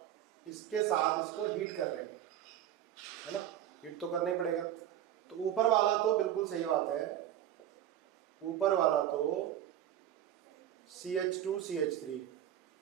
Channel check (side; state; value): left; quieter; 11.4 dB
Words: इसके साथ इसको हीट कर रहे हैं, है ना, हीट तो करना ही पड़ेगा। तो ऊपर वाला तो बिल्कुल सही बात है, ऊपर वाला तो CH2 CH3